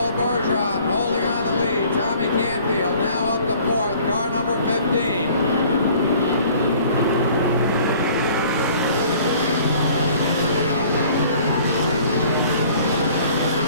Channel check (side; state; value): both; inverted; correlation -0.53